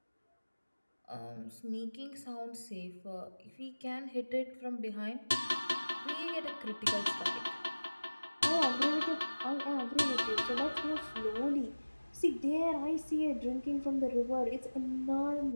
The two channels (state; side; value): inverted; both; correlation -1.00